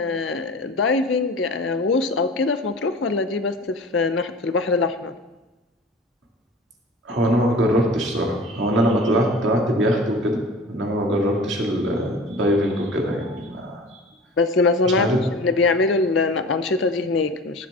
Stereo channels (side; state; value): both; normal; correlation 0.40